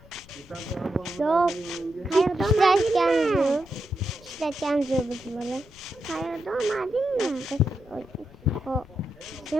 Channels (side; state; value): left; noise; rumble, 23 dB below the sound